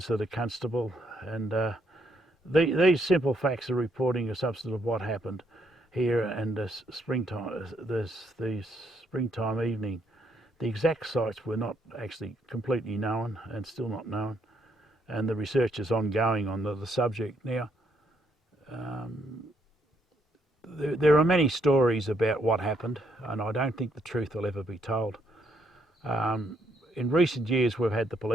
of the constable. And these simple facts are reporting a substance of what happened here, and the springtime evening. The exact sites were not actually completely known and still not known, and the research is ongoing on the subject now. There are many stories about what happened, and I don't think the truth will ever be told. In recent years, we've had the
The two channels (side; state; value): both; normal; correlation 0.73